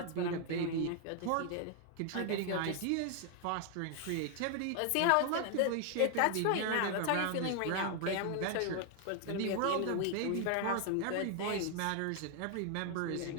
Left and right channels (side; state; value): both; different; correlation 0.00